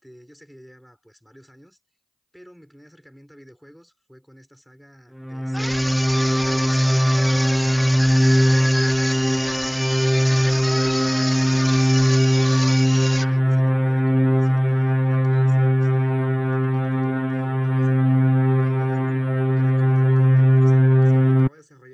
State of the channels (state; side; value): identical; both; correlation 1.00